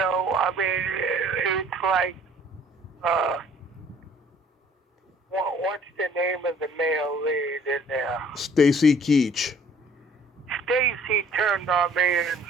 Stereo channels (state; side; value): normal; both; correlation 0.56